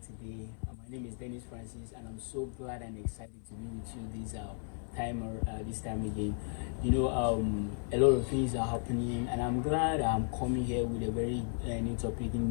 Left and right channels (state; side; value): silent; right; digital silence